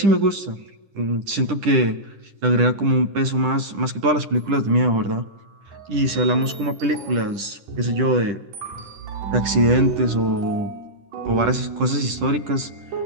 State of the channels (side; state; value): left; late; 10 ms